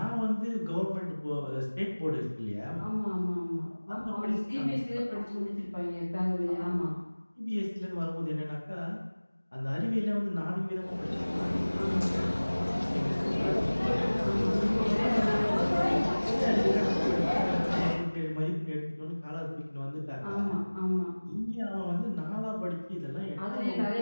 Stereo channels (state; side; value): inverted; both; correlation -1.00